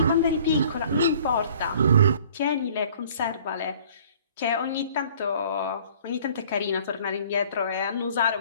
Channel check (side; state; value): both; inverted; correlation -0.53